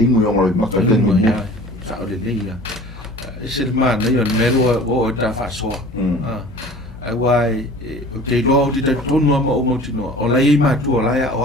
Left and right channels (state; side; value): normal; both; correlation 0.44